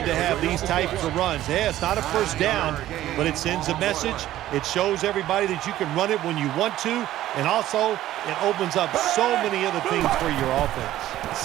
to have these types of runs. Yeah, it's not a first down, but it sends a message. It shows everybody that you can run it when you want to, and also it opens up so many other things for your offense.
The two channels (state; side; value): quieter; left; 13.9 dB